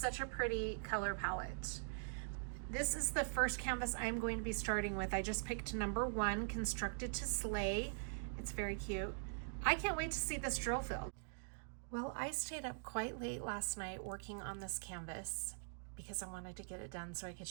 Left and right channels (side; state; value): left; silent; digital silence